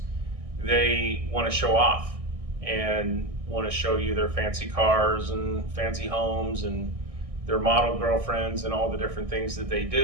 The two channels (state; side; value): late; left; 1.6 ms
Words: they want to show off and want to show you their fancy cars and fancy homes and their model girlfriends and all the different things that they